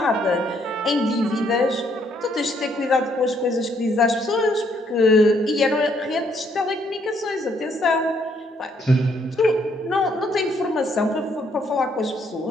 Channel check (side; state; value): both; normal; correlation 0.69